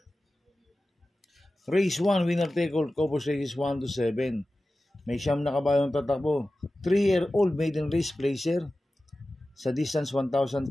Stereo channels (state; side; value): normal; both; correlation 0.95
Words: Race 1, winner take all, Cobos races 1 to 7. May siyam na kabayong tatakbo. 3-year-old maiden race placer sa distance 1,400